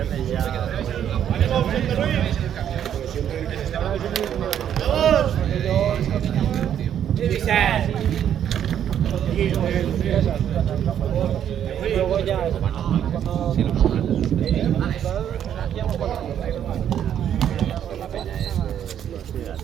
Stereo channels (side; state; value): left; quieter; 9.7 dB